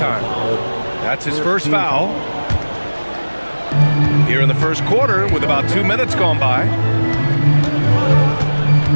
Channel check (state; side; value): inverted; both; correlation -1.00